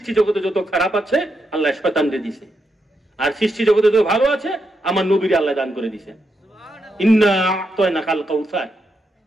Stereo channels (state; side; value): normal; both; correlation 0.83